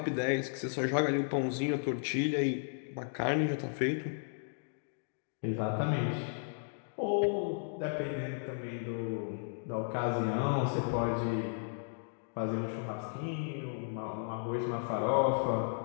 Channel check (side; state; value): right; silent; digital silence